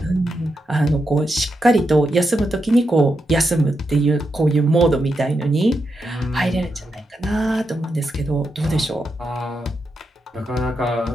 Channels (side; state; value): both; normal; correlation 0.85